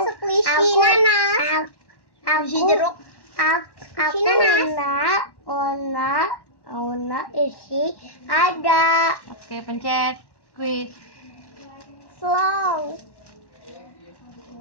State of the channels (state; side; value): late; right; 1.1 ms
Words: squishy nanas. Squishy jeruk. Aku Ona isi ada. Oke, pencet squeeze. Slow.